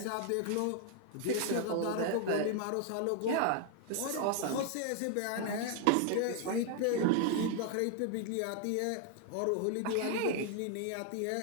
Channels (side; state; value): both; different; correlation 0.00